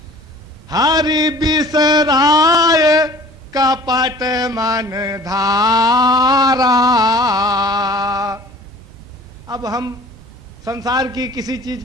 हरि बिसराय कपट मन धारा। अब हम संसार की किसी चीज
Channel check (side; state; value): both; normal; correlation 0.48